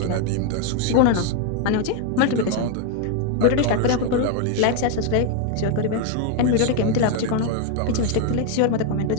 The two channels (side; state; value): both; different; correlation 0.01